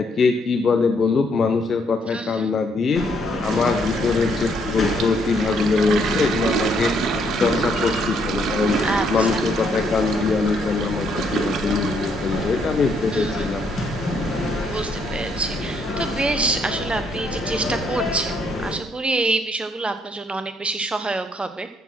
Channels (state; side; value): normal; both; correlation 0.71